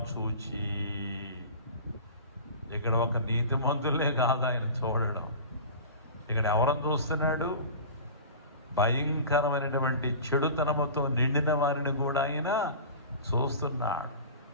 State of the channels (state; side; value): inverted; both; correlation -0.36